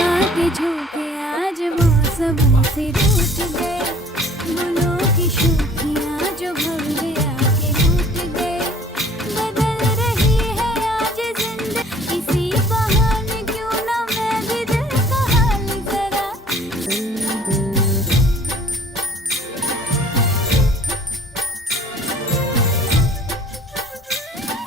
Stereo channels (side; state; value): both; normal; correlation 0.53